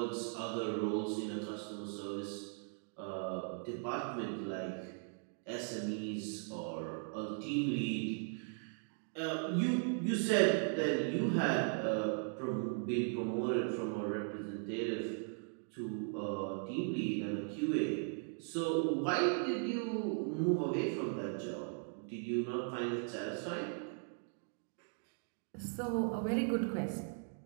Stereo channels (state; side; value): silent; left; 52 dB below the other